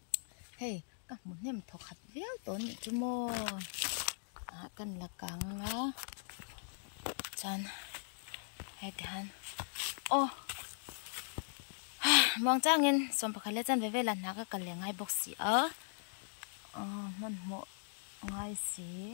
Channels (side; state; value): right; silent; digital silence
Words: hey ka mun nem tho khat veo to ni chu mo a kan la kang a chan hey han o mong changin som pakhale chan ve ve la na ka kal lengai box si a mun mo ngai si